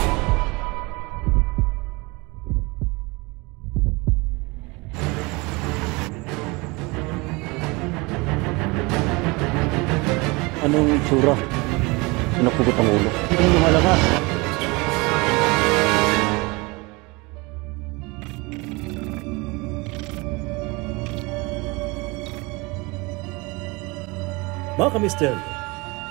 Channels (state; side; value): quieter; left; 25.6 dB